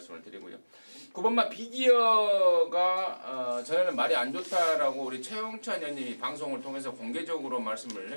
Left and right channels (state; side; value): inverted; both; correlation -1.00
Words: 드리고요. 9번마 비기어가 전에는 말이 안 좋다라고 우리 최용찬 의원님이 방송을 통해서 공개적으로 말씀을